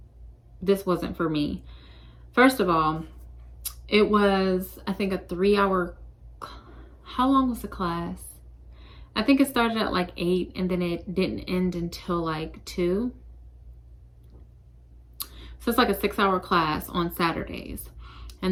this wasn't for me. First of all, it was, I think, a 3-hour, how long was the class? I think it started at like 8 and then it didn't end until like 2. So it's like a 6-hour class on Saturdays,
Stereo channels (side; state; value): both; identical; correlation 1.00